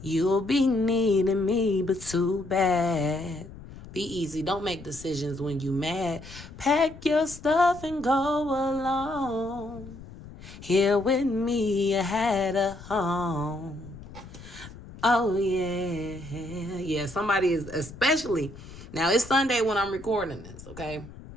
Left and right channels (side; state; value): left; noise; rumble, 16 dB below the sound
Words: be needing me, but too bad. Be easy. Don't make decisions when you mad. Pack your stuff and go alone. Here with me, you had a home. Oh, yeah. Yeah, somebody is, especially, now it's Sunday when I'm recording this, okay?